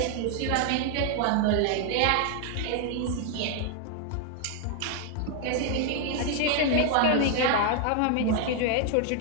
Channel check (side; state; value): both; different; correlation 0.00